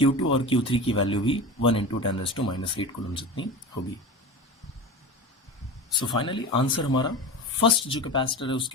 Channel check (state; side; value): normal; both; correlation 0.29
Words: और Q3 की वैल्यू भी 1 इंटू 10⁻⁸ कूलम जितनी होगी। सो फाइनली आंसर हमारा, फर्स्ट जो कैपेसिटर है